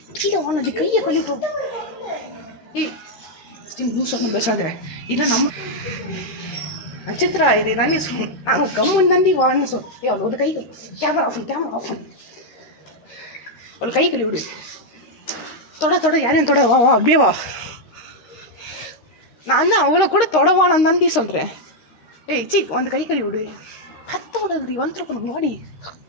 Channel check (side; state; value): right; late; 13 ms